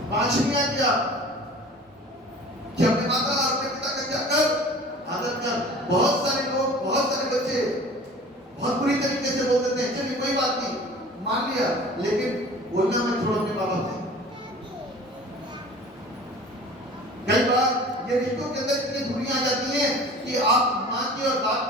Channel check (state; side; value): normal; both; correlation 0.43